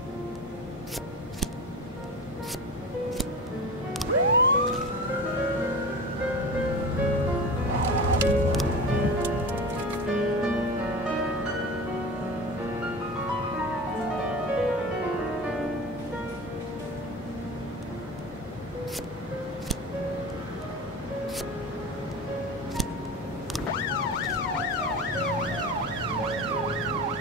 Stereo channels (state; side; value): normal; both; correlation 0.31